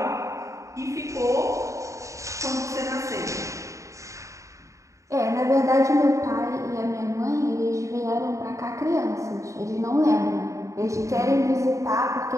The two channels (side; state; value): left; late; 0.15 ms